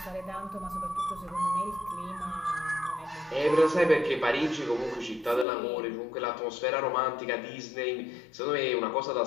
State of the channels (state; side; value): drops out; right; at 5.5 s